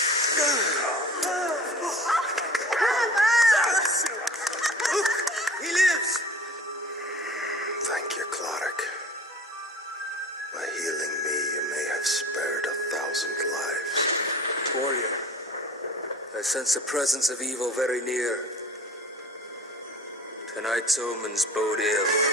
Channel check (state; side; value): normal; both; correlation 0.42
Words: Look, he lives. Thank you, Clodagh. By healing me, you may have spared 1,000 lives. Warrior, as sense the presence of evil very near. Tonight's omens bode ill.